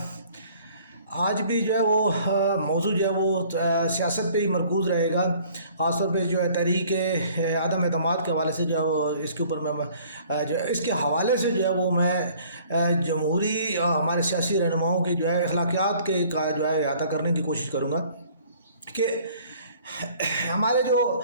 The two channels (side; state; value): both; inverted; correlation -0.55